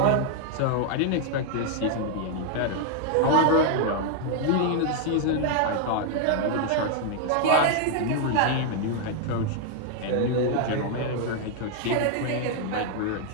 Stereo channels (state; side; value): different; both; correlation 0.00